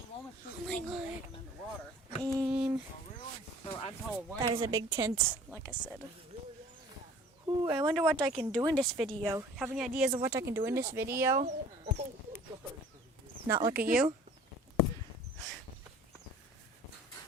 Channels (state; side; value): normal; both; correlation 0.49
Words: Oh my god. And that is a big tent, like I said. Ooh, I wonder what I can do in this video. Have any ideas of what I can do in this video? Not look at you?